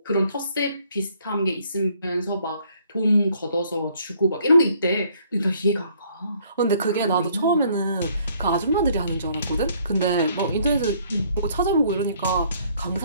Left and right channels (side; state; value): both; inverted; correlation -0.63